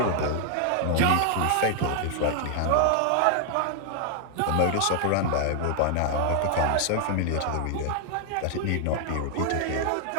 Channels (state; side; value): different; both; correlation 0.00